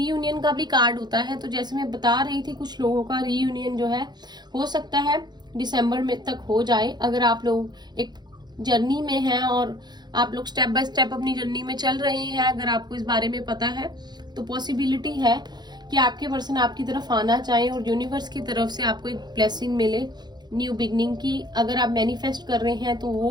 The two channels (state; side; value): late; left; 0.21 ms